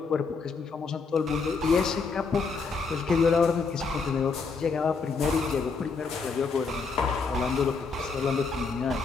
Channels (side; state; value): right; quieter; 4.7 dB